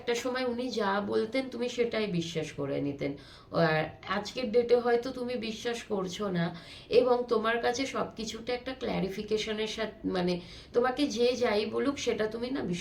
সময় উনি যা বলতেন তুমি সেটাই বিশ্বাস করে নিতেন, আর আজকের ডেটে হয়তো তুমি বিশ্বাস করছো না, এবং তোমার কাছে সব কিছুটা একটা ক্ল্যারিফিকেশনের সাথে মানে তোমাকে যে যাই বলুক সেটা তুমি না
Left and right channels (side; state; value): both; identical; correlation 1.00